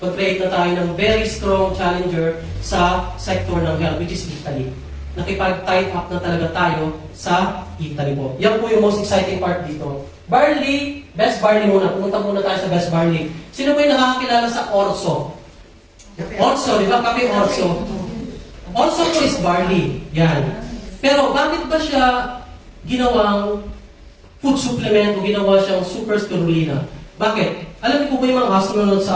mag-create na tayo ng very strong challenger sa sector ng health, which is Italy. Nakipag-tight up na talaga tayo sa Italy po. Yan po yung most exciting part dito. Barley, best barley muna. Pumunta muna tayo sa best barley. Sino po yung nakakakilala sa Orso? Orso, di ba? Kape Orso. Orso po is barley. Yan. Pero bakit ba siya ginawang food supplement o ginawa siyang super spirulina? Bakit? Alam niyo po ba yung mga astronauts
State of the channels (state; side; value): identical; both; correlation 1.00